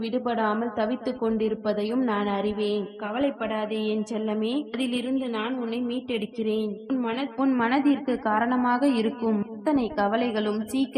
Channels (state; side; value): identical; both; correlation 1.00